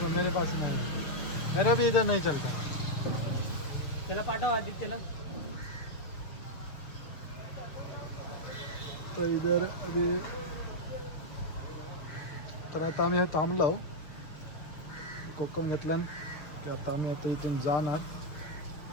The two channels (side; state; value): right; late; 6.9 ms